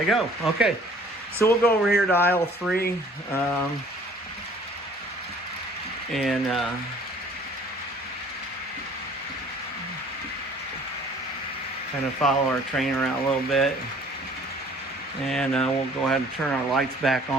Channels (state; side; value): normal; both; correlation 0.54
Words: go. Okay, so we'll go over here to aisle 3. And kind of follow our train around a little bit. And we'll go ahead and turn our lights back